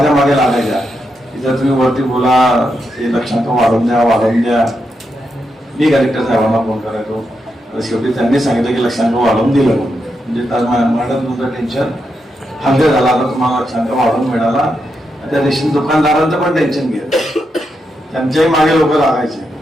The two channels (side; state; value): both; normal; correlation 0.84